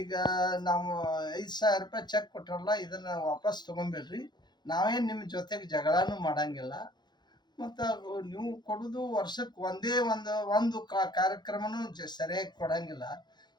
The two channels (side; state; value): right; late; 0.21 ms